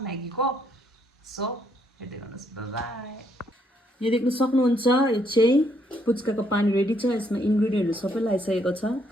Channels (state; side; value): normal; both; correlation 0.72